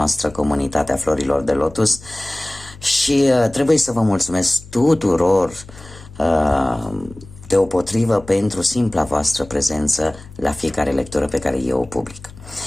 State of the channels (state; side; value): noise; left; hum, 20 dB below the sound